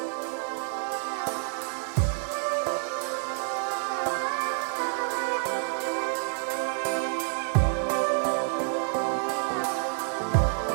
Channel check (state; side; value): silent; left; 59 dB below the other